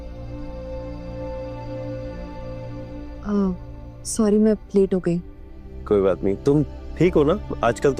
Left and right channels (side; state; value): both; identical; correlation 1.00